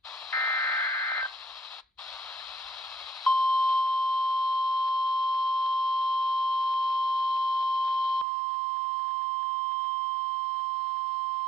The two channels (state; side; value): drops out; left; at 8.2 s